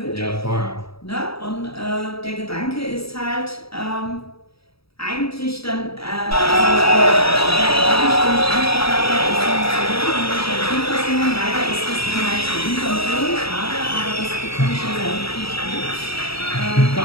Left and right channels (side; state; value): right; late; 0.77 ms